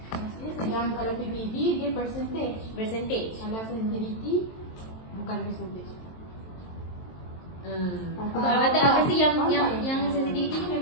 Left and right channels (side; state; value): right; late; 23 ms